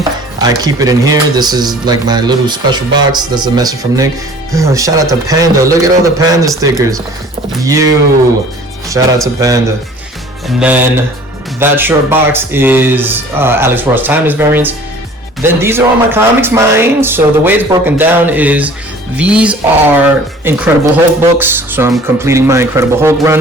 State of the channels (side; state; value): both; normal; correlation 0.49